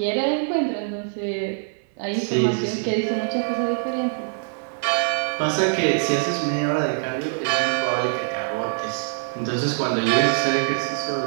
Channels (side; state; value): left; silent; 56 dB below the other